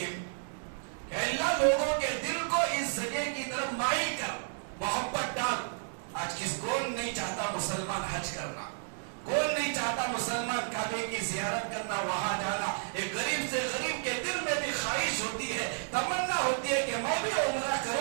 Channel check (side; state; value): left; silent; 56 dB below the other